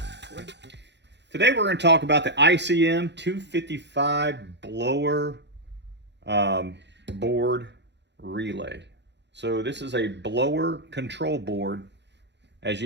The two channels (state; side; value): late; left; 0.51 ms